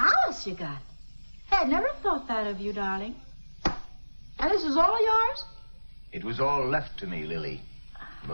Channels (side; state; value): both; inverted; correlation -1.00